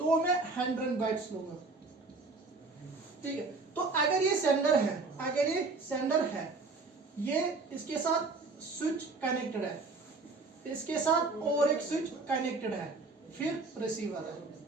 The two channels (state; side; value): quieter; left; 3.8 dB